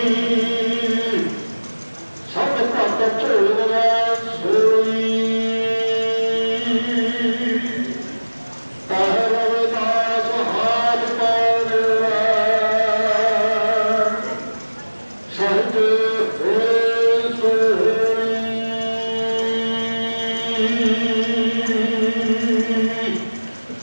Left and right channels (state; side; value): inverted; both; correlation -1.00